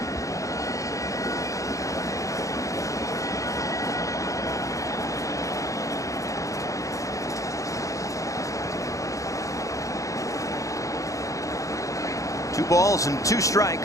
Two balls and 2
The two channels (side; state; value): right; late; 0.16 ms